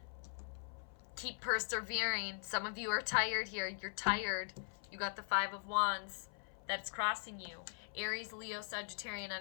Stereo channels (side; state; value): right; silent; 51 dB below the other